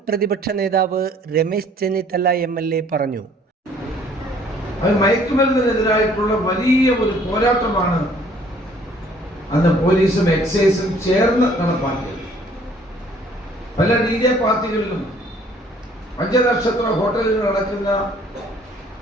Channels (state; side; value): normal; both; correlation 0.58